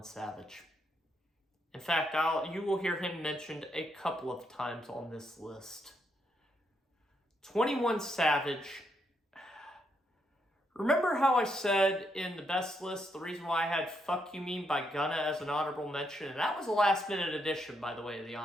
Savage. In fact, you will hear him mentioned a couple of times on this list. 21 Savage. Remember how I said in the best list, the reason why I had Fuck You Mean by Gunna as an honorable mention? And that was a last minute addition, by the way, of the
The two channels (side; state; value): both; normal; correlation 0.78